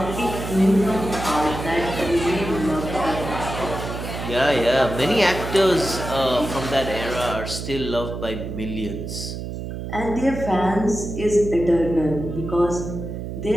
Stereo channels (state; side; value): noise; right; hum, 7 dB below the sound